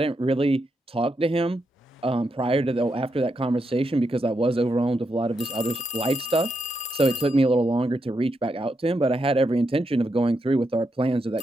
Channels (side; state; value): both; normal; correlation 0.83